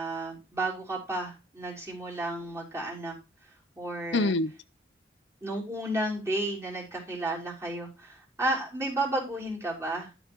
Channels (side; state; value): both; normal; correlation 0.55